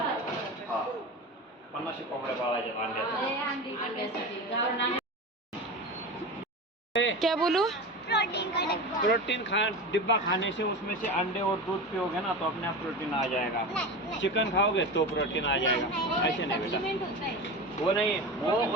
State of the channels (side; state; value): both; normal; correlation 0.26